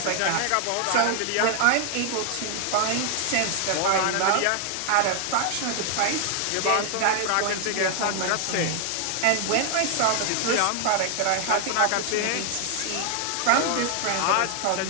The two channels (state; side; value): different; both; correlation 0.00